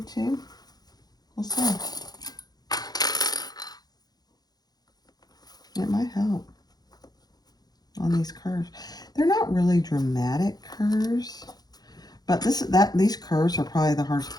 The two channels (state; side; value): late; right; 0.19 ms